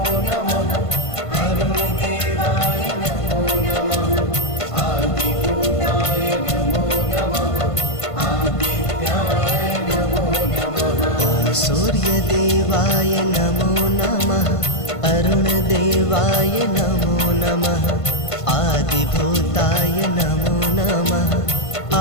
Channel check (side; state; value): right; late; 1.5 ms